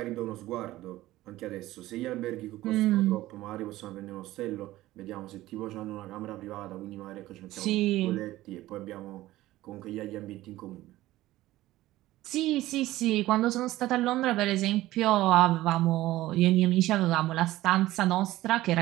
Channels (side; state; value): left; quieter; 16.3 dB